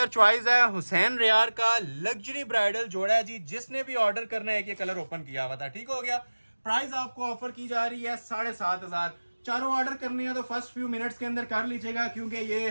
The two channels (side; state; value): both; inverted; correlation -1.00